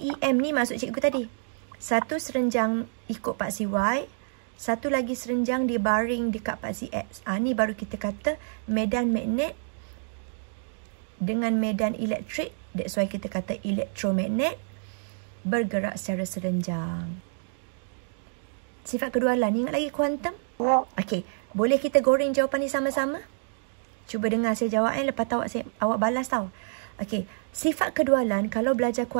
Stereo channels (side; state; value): left; silent; digital silence